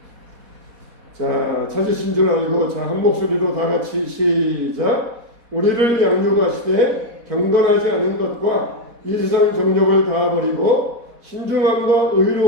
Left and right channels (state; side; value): late; left; 4.1 ms